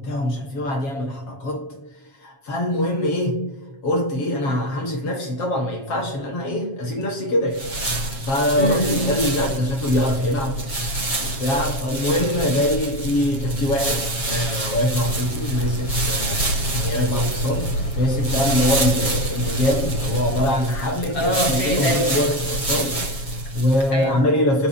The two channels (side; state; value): right; late; 7.4 ms